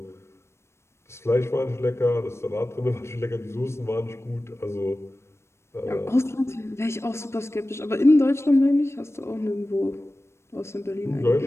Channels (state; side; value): late; right; 0.13 ms